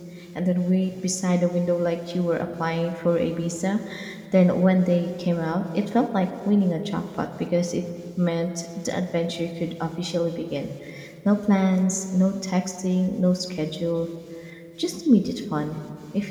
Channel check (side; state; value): both; identical; correlation 1.00